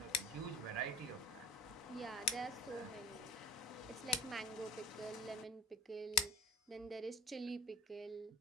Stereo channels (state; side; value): normal; both; correlation 0.34